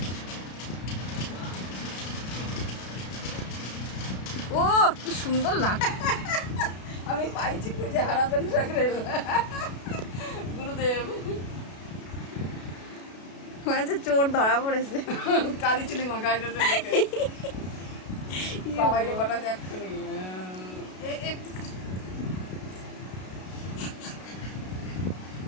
ও কি সুন্দর লাগছে। আমি পাইছি খুঁজে হারাতেন সাকরেল গুরুদেব হয়েছে চোর ধরা পড়েছে। কালি চুলি মাখাই বাবাই রে পাঠাতে এক্ষুনি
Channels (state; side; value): late; right; 32 ms